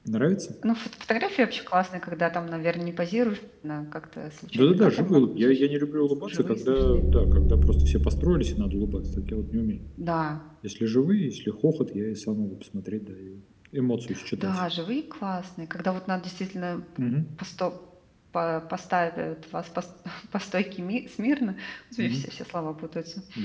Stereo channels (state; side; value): identical; both; correlation 1.00